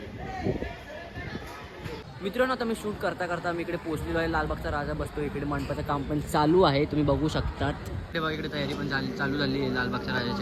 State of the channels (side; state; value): both; identical; correlation 1.00